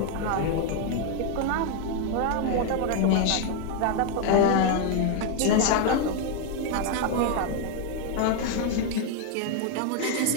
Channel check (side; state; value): both; different; correlation 0.01